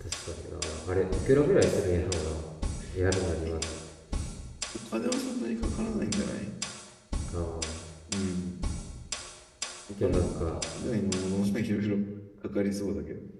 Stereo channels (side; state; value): both; identical; correlation 1.00